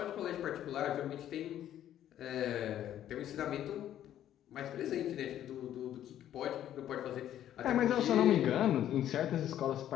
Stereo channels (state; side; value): quieter; right; 11.5 dB